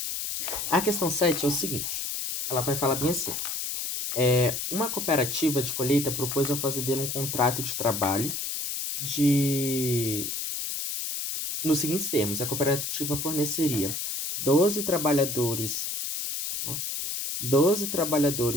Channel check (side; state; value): left; noise; hiss, 3 dB below the sound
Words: A questão 7 é o seguinte. Ela vai falar bem assim. Uma cooperativa de colheita propôs ao fazendeiro um contrato de trabalho nos seguintes termos. A cooperativa forneceria 12 trabalhadores